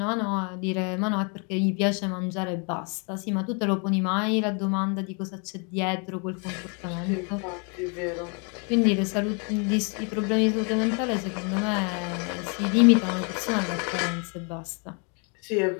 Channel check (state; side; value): quieter; right; 36.3 dB